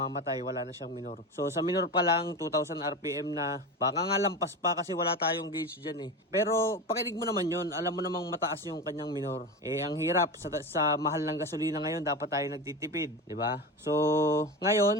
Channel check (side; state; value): both; normal; correlation 0.24